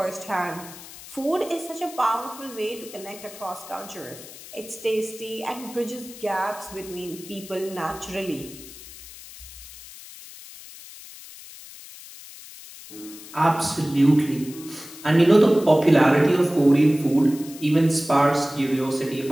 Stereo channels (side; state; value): left; noise; hiss, 16 dB below the sound